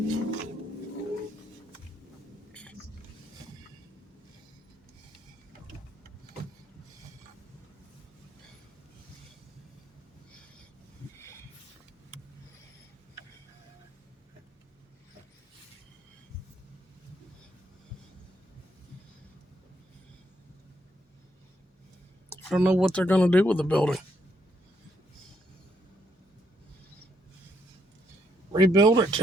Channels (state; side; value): normal; both; correlation 0.75